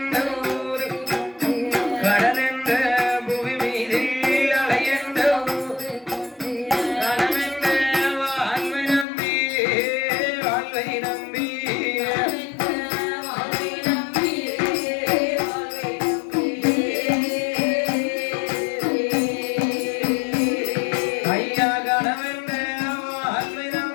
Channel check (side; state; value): right; drops out; at 9.1 s